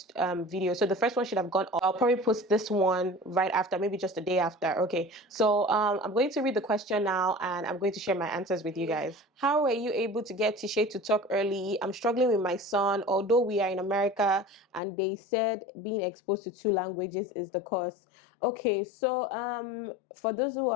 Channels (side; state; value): right; drops out; at 14.8 s